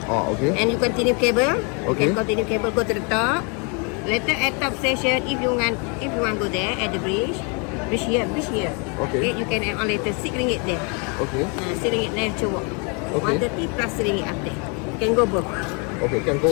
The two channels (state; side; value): quieter; right; 34.2 dB